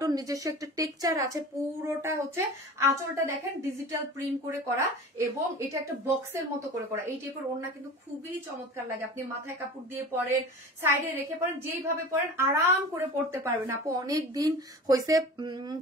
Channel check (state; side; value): normal; both; correlation 0.37